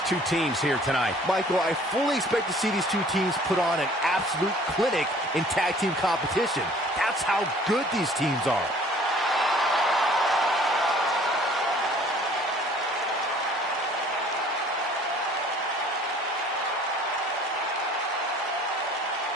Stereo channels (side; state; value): both; normal; correlation 0.53